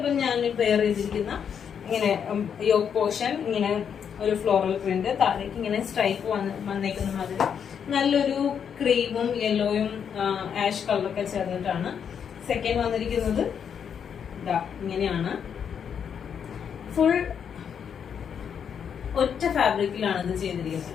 ഞാൻ വെയർ ചെയ്തിരിക്കുന്ന ഇങ്ങനെ യോക്ക് പോർഷൻ, ഇങ്ങനെ ഒരു ഫ്ലോറൽ പ്രിന്റ്, താഴേക്ക് ഇങ്ങനെ സ്ട്രൈപ്പ് വന്നേക്കുന്ന മാതിരി നല്ലൊരു ക്രീമും യെല്ലോയും ആഷ് കളറൊക്കെ ചേർന്നിട്ടാണ്. സെക്കൻഡ് വന്നിരിക്കുന്നത് ഇതാ ഇങ്ങനെയാണ്, ഫുൾ ഒറ്റ ഫാബ്രിക്കിലാണ് ഇത്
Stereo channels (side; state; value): right; quieter; 7.6 dB